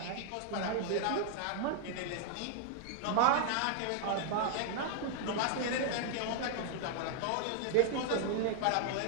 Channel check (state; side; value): different; both; correlation 0.00